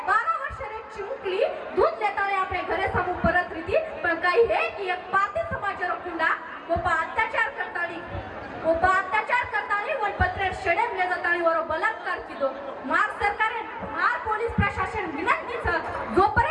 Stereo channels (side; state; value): both; identical; correlation 1.00